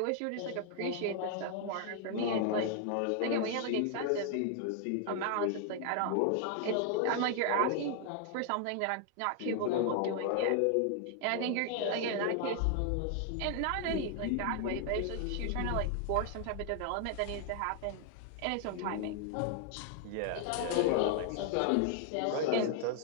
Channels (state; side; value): different; both; correlation 0.00